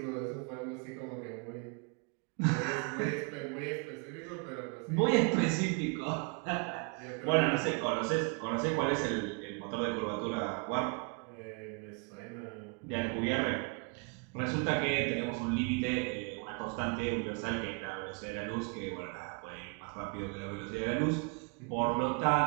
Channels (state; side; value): quieter; left; 35.0 dB